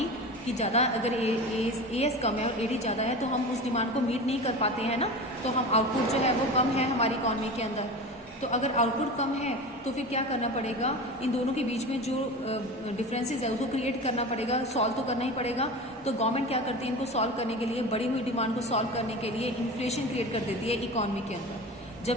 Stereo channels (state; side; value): normal; both; correlation 0.31